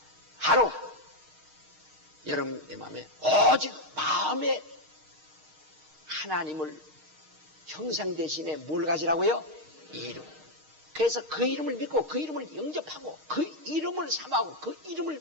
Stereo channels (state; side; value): late; left; 6.5 ms